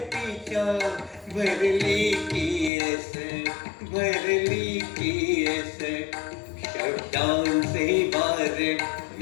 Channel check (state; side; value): drops out; right; at 2.7 s